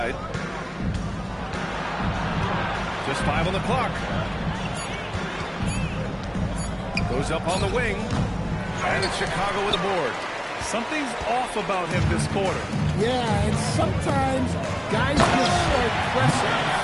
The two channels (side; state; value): both; identical; correlation 1.00